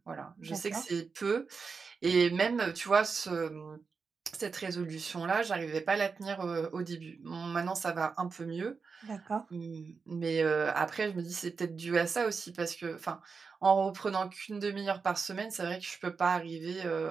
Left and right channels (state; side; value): quieter; left; 5.1 dB